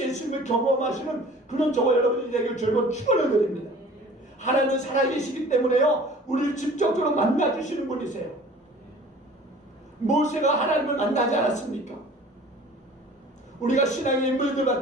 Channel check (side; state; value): both; normal; correlation 0.47